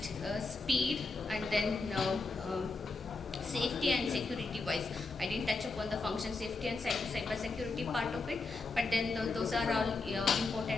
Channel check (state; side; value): quieter; right; 3.7 dB